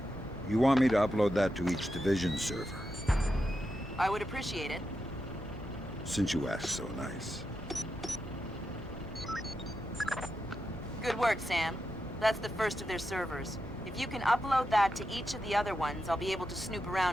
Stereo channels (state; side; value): normal; both; correlation 0.87